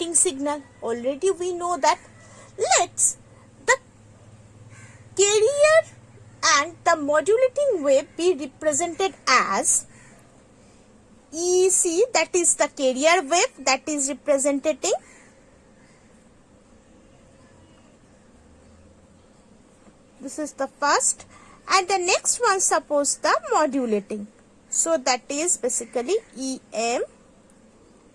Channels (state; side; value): identical; both; correlation 1.00